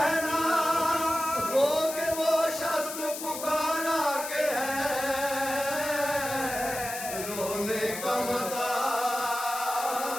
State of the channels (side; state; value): left; noise; hiss, 8 dB below the sound